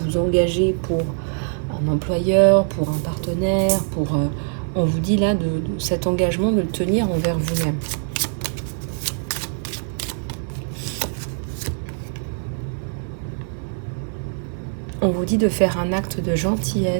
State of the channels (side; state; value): left; silent; 64 dB below the other